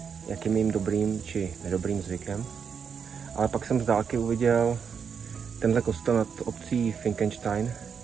jak je mým dobrým či nedobrým zvykem, ale pak jsem z dálky uviděl tenhle kostel nad obcí Finkenstein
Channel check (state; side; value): quieter; left; 6.6 dB